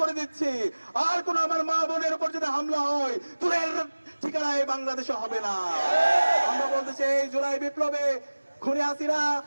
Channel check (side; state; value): both; inverted; correlation -1.00